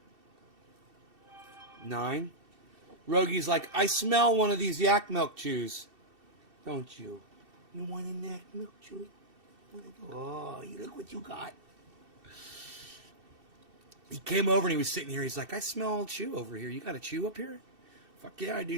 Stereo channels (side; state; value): left; late; 2.7 ms